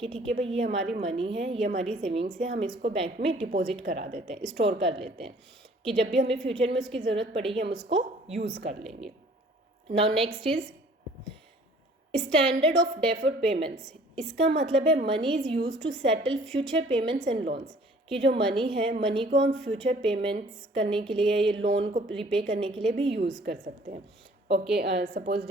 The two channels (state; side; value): normal; both; correlation 0.54